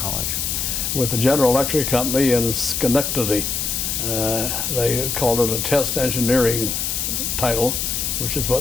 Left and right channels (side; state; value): left; noise; hiss, 1 dB below the sound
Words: With the General Electric Company in Schenectady. They called it a test engineering title, which is